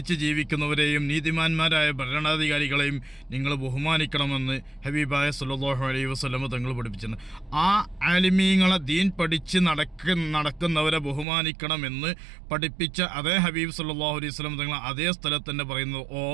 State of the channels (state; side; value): drops out; left; at 11.2 s